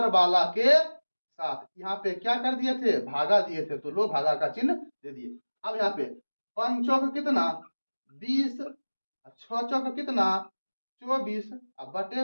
वाला के साथ। यहाँ पे क्या कर दिए थे भागा दिए थे, तो लो भागा का चिन्ह दे दिए। अब यहाँ पे 5 चौक कितना 20, 6 चौक कितना 24, अब बटे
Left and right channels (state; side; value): inverted; both; correlation -1.00